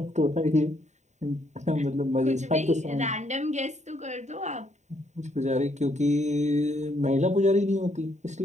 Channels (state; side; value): late; left; 0.34 ms